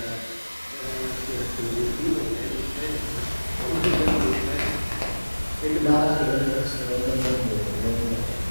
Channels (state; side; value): inverted; both; correlation -1.00